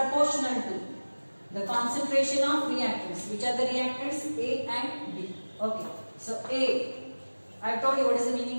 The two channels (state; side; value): inverted; both; correlation -1.00